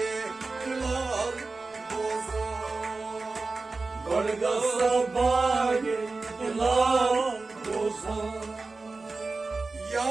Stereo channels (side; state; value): left; quieter; 3.8 dB